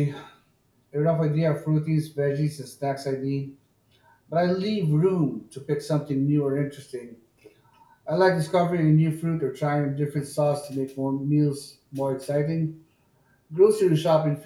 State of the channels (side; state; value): both; identical; correlation 1.00